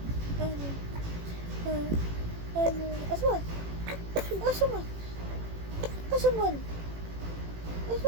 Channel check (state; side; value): late; left; 18 ms